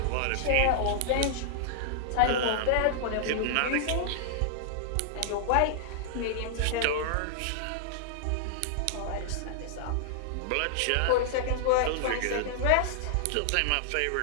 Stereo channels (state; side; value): different; both; correlation -0.01